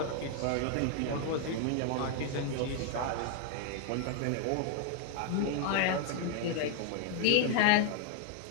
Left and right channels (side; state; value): both; different; correlation 0.00